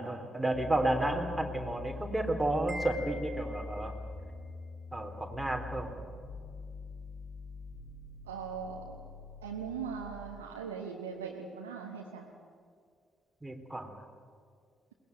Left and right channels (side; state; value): both; normal; correlation 0.81